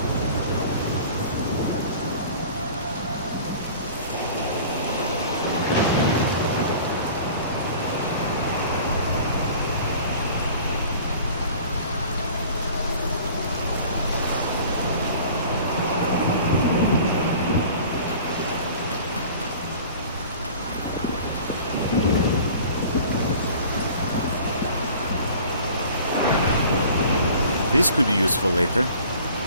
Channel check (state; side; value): inverted; both; correlation -0.45